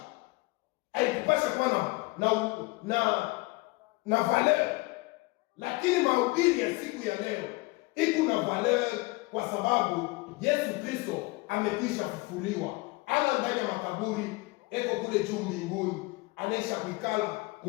haikupasha kwa na valeur. Lakini mahubiri ya siku ya leo iko na valeur kwa sababu Yesu Kristo amekwisha kufufuliwa. Ana ndani ya makaburi, eko kule juu mbinguni, anaisha kuikala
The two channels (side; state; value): right; quieter; 23.6 dB